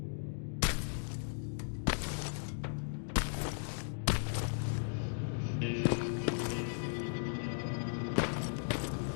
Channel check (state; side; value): silent; right; digital silence